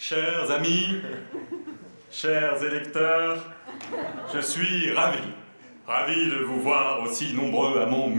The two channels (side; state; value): both; inverted; correlation -1.00